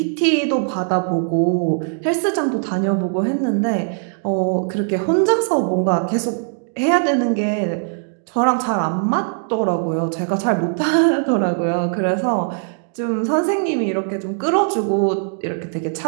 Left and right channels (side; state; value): left; silent; digital silence